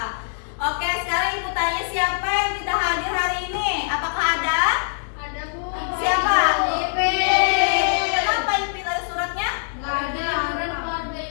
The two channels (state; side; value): silent; right; 64 dB below the other